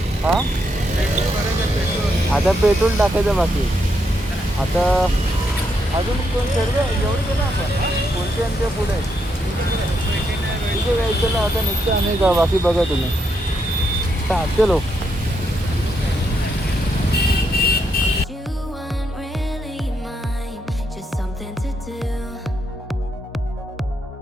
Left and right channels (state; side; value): normal; both; correlation 0.78